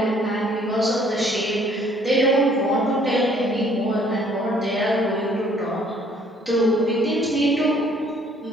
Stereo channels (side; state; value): both; normal; correlation 0.60